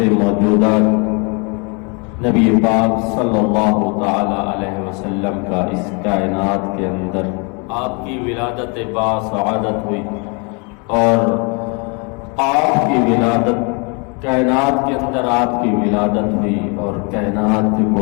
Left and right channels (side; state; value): right; quieter; 33.1 dB